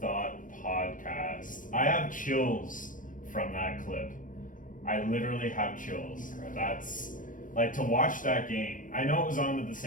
podcast. I have chills from that clip. I literally have chills. That's like to watch that game. I know it was on at the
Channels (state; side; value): late; right; 0.38 ms